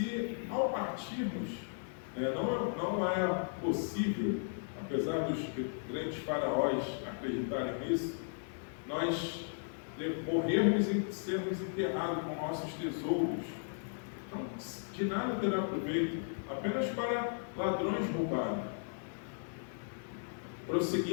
ao partirmos, não é possível, apesar dos grandes faraós acreditarem nisso, nós morrermos e sermos enterrados com nossos tesouros? Então, de nada terá proveito, apenas para ladrões roubarem.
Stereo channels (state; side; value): silent; right; digital silence